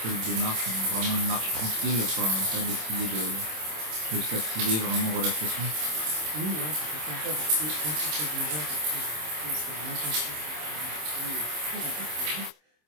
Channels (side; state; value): left; late; 26 ms